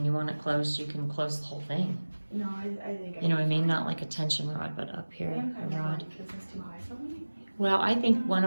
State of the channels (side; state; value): both; inverted; correlation -1.00